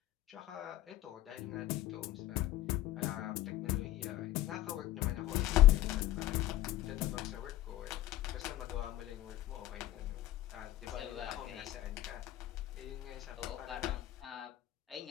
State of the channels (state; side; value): quieter; right; 14.6 dB